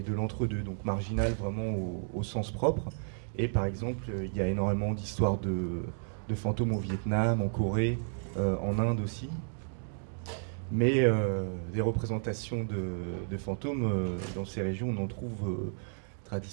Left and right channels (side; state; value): left; silent; digital silence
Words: de l'entre-deux, donc marginal vraiment au sens propre. Et par exemple, il y a énormément d'histoires de fantômes au Vietnam, en Corée, en Inde aussi. Mais des représentations de fantômes dans ces régions, on n'en trouve